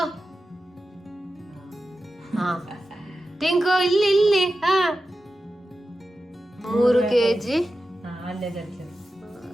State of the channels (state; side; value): normal; both; correlation 0.92